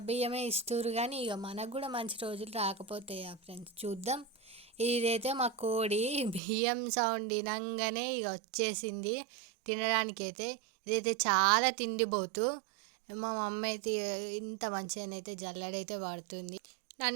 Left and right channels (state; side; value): drops out; left; at 6.4 s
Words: బియ్యమే ఇస్తురు, కానీ ఇక మనకు కూడా మంచి రోజులు రాకపోతాయా ఫ్రెండ్స్? చూద్దాం. ఇదైతే మా కోడి బియ్యం సౌండ్ వినంగానే ఇక వచ్చేసింది తినడానికైతే. ఇదైతే చాలా తిండిపోతూ. మా మమ్మీ అయితే ఇంత మంచిగానైతే జల్లెడైతే వాడుతుంది.